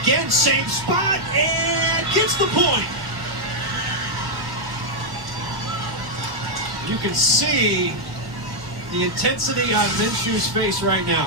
again, same spot, and gets the point. You can see the intensity on Minshew's face right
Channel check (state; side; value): late; left; 1.8 ms